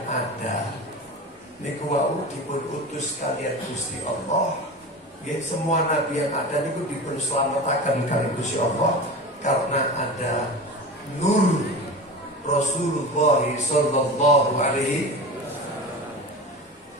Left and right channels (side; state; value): both; normal; correlation 0.30